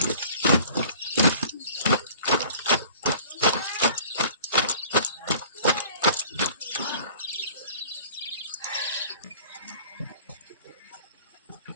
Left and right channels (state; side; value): inverted; both; correlation -0.48